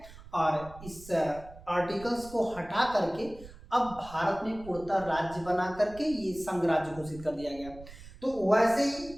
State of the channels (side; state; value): right; noise; rumble, 18 dB below the sound